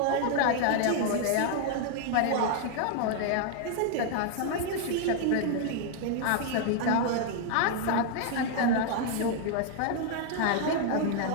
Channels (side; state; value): both; different; correlation 0.00